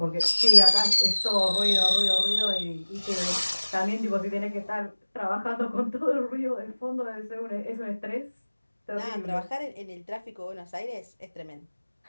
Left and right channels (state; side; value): inverted; both; correlation -1.00